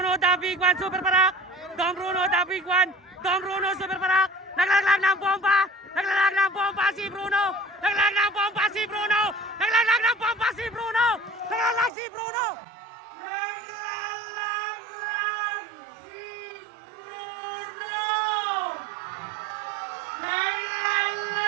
The Big One, Super Parak. Dom Bruno, The Big One. Dom Bruno, Super Parak. Naglalaglag ng bomba. Naglalaglag ng bomba si Bruno. Naglalaglag ng bomba si Bruno. Naglalaglag ng bomba si Bruno. Naglalaglag si Bruno.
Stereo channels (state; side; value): drops out; left; at 11.9 s